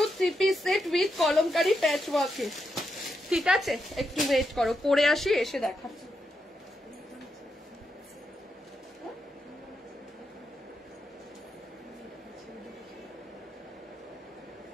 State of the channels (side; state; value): both; normal; correlation 0.84